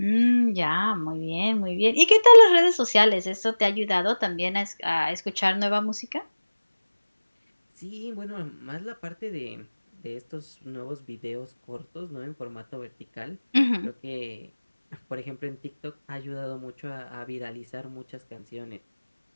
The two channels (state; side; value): inverted; both; correlation -1.00